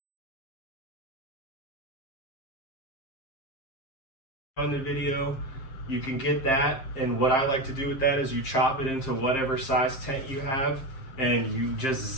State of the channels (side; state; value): right; late; 7.6 ms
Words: On the video, you can get that, and what I like to do with that is you chop it into whatever size tent you have, and you just